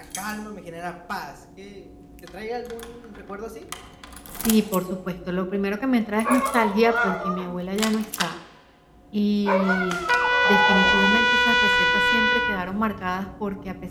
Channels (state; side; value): identical; both; correlation 1.00